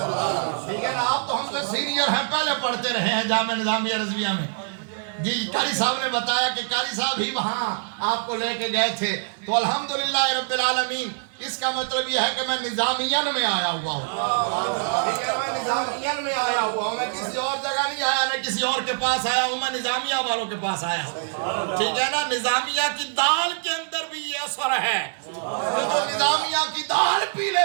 ٹھیک ہے نا؟ آپ تو ہم سے سینئر ہیں، پہلے پڑھتے رہے ہیں جامعہ نظامیہ رضویہ میں۔ جی قاری صاحب نے بتایا کہ قاری صاحب ہی وہاں آپ کو لے کے گئے تھے، تو الحمدللہ رب العالمین، اس کا مطلب یہ ہے کہ میں نظامیہ میں آیا ہوا ہوں، ٹھیک ہے، میں نظامیہ میں آیا ہوا ہوں، میں کسی اور جگہ نہیں آیا، نہ کسی اور کے پاس آیا ہوں، میں نظامیہ والوں کے پاس آیا ہوں، ٹھیک ہے نا؟ نظامیہ کی دال کے اندر بھی یہ اثر ہے، جو نظامیہ کی دال پی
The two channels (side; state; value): left; silent; digital silence